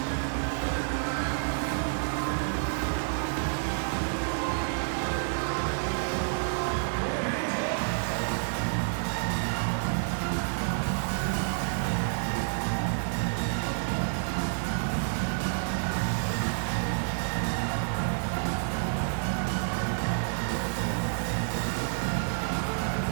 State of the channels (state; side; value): silent; left; digital silence